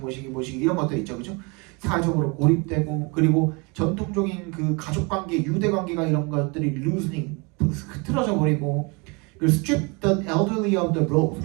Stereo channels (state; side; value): quieter; left; 29.6 dB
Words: 이런 것들 있죠, 그죠? 사회적으로 고립되고 그리고 전통적인 그 가족 관계, 유대 관계가 이런 것들이 loosening, 흐트러져 버리고 그리고 strip the elderly of the roles.